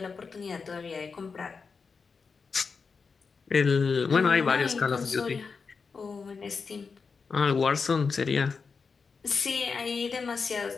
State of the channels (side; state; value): right; quieter; 5.1 dB